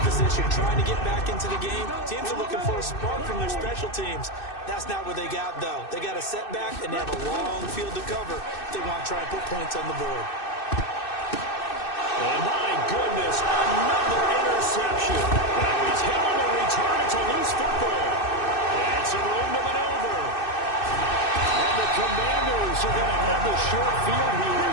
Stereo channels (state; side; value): late; right; 2.6 ms